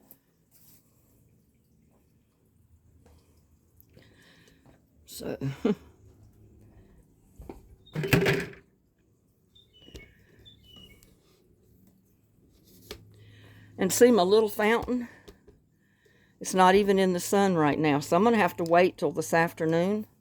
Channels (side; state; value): both; identical; correlation 1.00